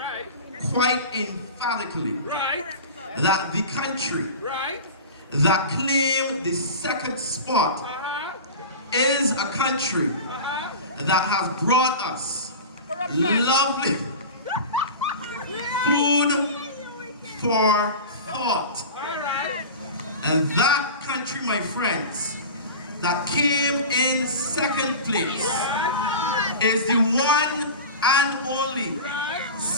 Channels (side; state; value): both; inverted; correlation -0.31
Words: quite emphatically that the country that claimed the second spot is a country that has brought us lovely food for thought. And that country, my friends, that came in second place is the one and only